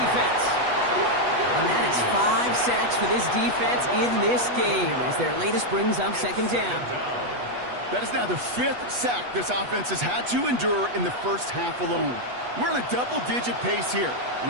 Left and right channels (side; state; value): left; late; 8.2 ms